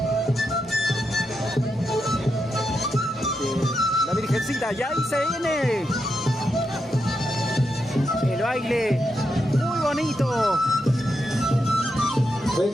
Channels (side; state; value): both; normal; correlation 0.84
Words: la Virgencita, ya ahí se viene el baile muy bonito. Fue